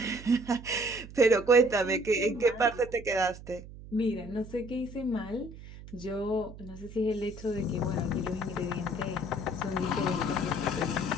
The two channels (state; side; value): noise; right; hum, 15 dB below the sound